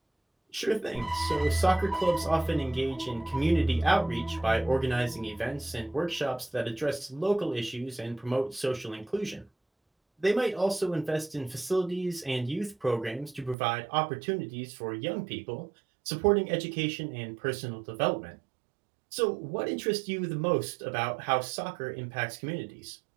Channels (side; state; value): left; drops out; at 13.6 s